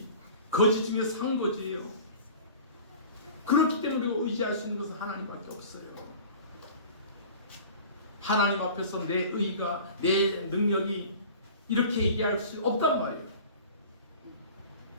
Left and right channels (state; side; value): inverted; both; correlation -0.42